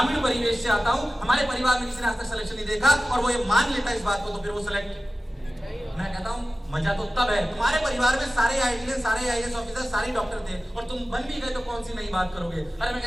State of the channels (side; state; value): both; normal; correlation 0.95